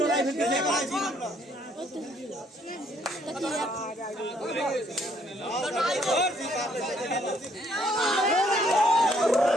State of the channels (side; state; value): both; normal; correlation 0.67